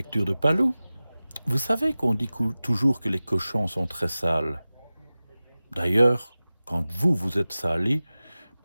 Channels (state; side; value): inverted; both; correlation -0.97